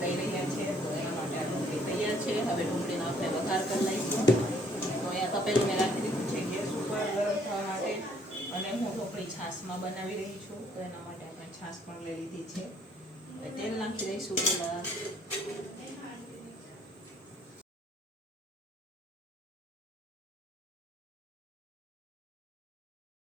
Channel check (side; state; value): both; normal; correlation 0.63